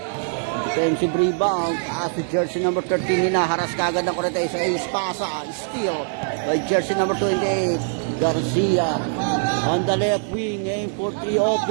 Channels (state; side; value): silent; left; digital silence